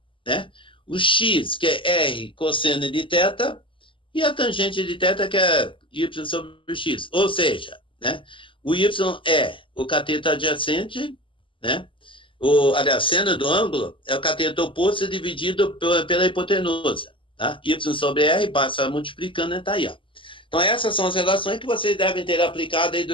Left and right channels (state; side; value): late; right; 0.25 ms